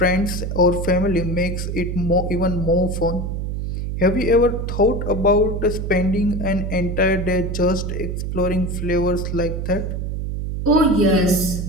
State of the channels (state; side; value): noise; right; hum, 3 dB below the sound